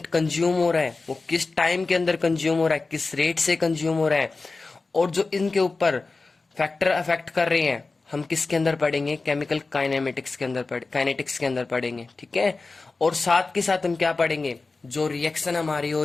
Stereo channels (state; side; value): quieter; right; 3.8 dB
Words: कंज्यूम हो रहा है वो किस टाइम के अंदर कंज्यूम हो रहा है, किस रेट से कंज्यूम हो रहा है, और जो इनके ऊपर फैक्टर अफेक्ट कर रहे हैं हम किसके अंदर पढ़ेंगे? केमिकल काइनेमेटिक्स के अंदर काइनेटिक्स के अंदर पढ़ेंगे। ठीक है। और साथ के साथ हम क्या पढ़ेंगे? जो रिएक्शन हमारी हो